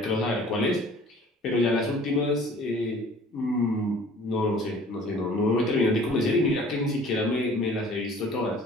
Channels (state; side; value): normal; both; correlation 0.50